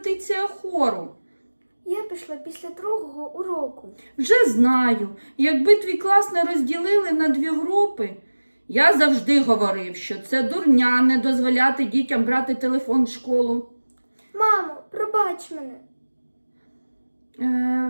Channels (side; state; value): both; inverted; correlation -1.00